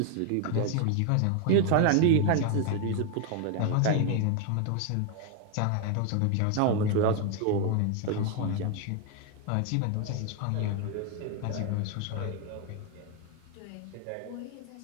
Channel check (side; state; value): both; different; correlation 0.01